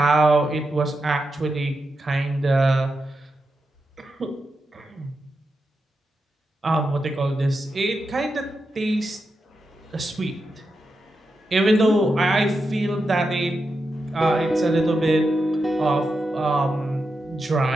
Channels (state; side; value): normal; both; correlation 0.87